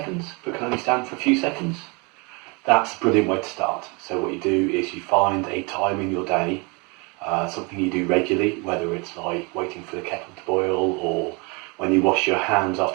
but can only stand for a few seconds, that's a brilliant way to start. So what you do is you find a time in your day, something you do regularly, whether it's like waiting for the kettle to boil or when you wash your hands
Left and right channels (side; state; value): left; quieter; 29.9 dB